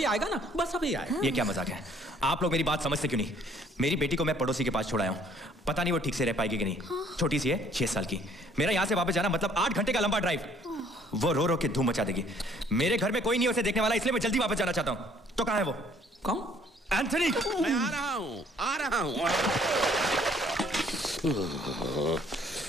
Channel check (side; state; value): both; normal; correlation 0.60